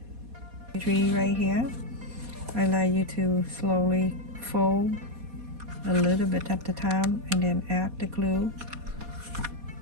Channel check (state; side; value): late; left; 4.2 ms